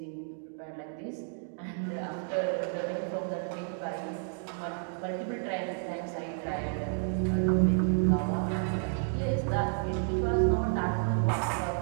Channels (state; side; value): silent; left; 57 dB below the other